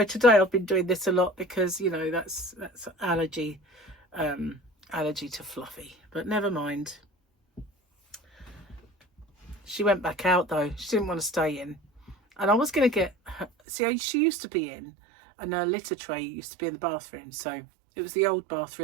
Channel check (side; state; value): left; drops out; at 13.5 s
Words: today I've been doing this a lot because, you know, that's allergy to Fluffy. But never mind. She went back out though. She didn't want to stay in. And I was going to get her, see, she used to be in, and her litter tray used to be in the bathroom. So it was the old